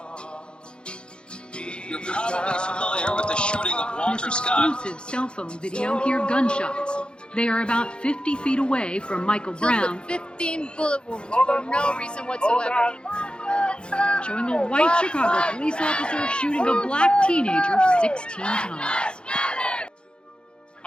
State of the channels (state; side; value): late; right; 0.053 ms